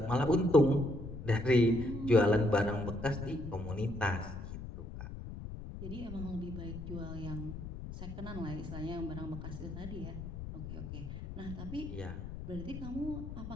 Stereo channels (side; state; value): left; noise; rumble, 9 dB below the sound